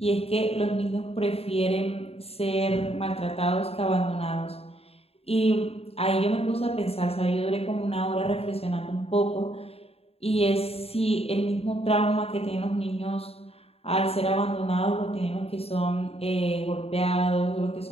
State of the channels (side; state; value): right; late; 0.29 ms